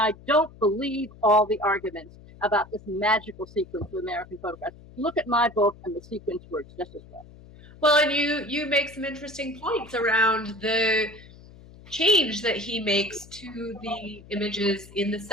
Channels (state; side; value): noise; left; hum, 21 dB below the sound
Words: don't believe all the arguments about this magical sequence of American photographs. Look at my book, and the sequence works just as well. Well, and you make some interesting points around the change that he makes to the images in the